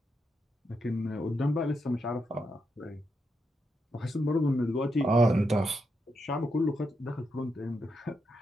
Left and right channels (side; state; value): both; normal; correlation 0.83